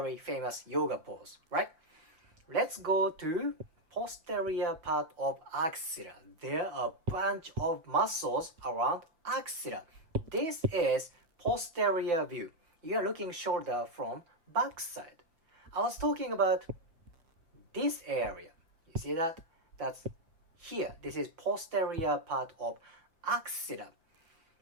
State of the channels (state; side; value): late; left; 6.1 ms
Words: famous yoga pose, right? Let's go to posterior part of axilla. There are a bunch of muscles around axilla. This is posterior view. You are looking shoulder from back side. I was talking about this area. You see that? That's here. This is posterior part of axilla.